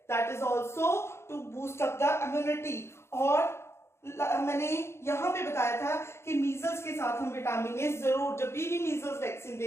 that is also to boost up the immunity. और मैंने यहाँ पे बताया था कि मीजल्स के साथ हम विटामिन ए जरूर, जब भी मीजल्स वैक्सीन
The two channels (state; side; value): late; right; 0.13 ms